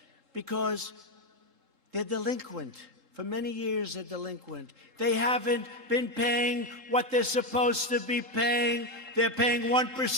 because they're delinquent. For many years, they're delinquent. They haven't been paying what they're supposed to be paying. They're paying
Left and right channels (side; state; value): left; late; 3.7 ms